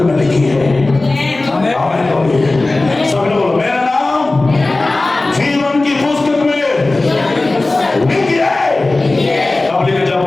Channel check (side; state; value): right; quieter; 3.1 dB